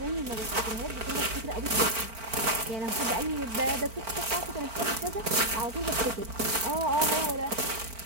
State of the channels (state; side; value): late; left; 4.5 ms